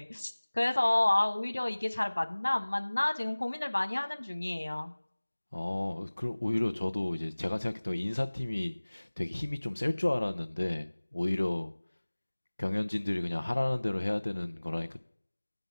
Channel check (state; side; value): inverted; both; correlation -1.00